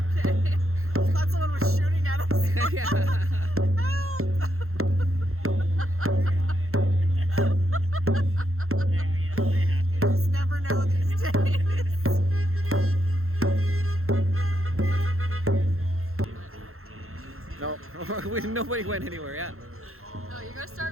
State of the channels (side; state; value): left; late; 0.62 ms